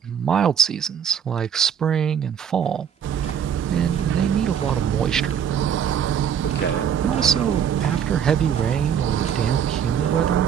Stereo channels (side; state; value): left; quieter; 8.3 dB